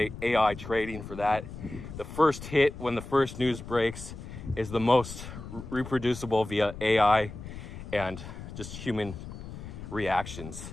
AI trading for that. The first hit when the first news breaks is the most reproducible via AI and just human reactions,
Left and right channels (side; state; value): left; noise; rumble, 11 dB below the sound